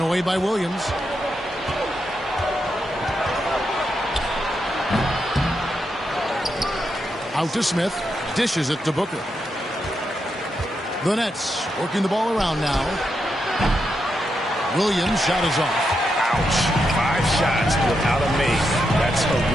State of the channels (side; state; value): both; normal; correlation 0.84